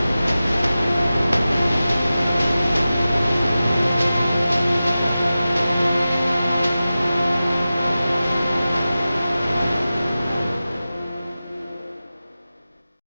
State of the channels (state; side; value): inverted; both; correlation -0.95